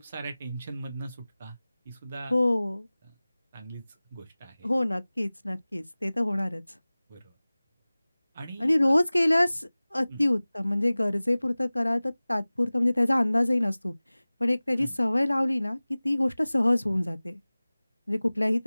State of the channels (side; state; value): both; inverted; correlation -0.99